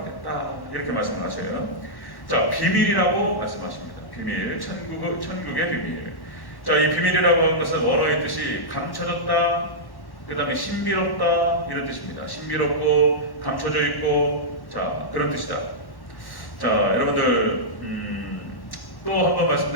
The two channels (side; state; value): right; late; 1.1 ms